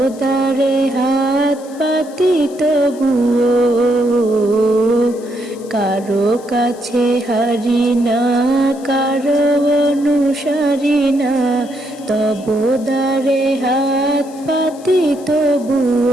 তারে হাত পাতি তবুও। কারো কাছে হারি না, কারো অনুসারী না, তবু তারে হাত পাতি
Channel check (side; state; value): left; noise; hiss, 23 dB below the sound